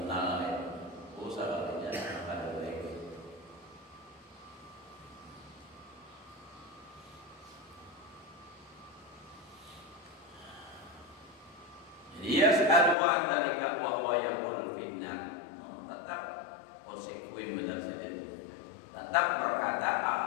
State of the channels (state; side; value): drops out; right; at 13.0 s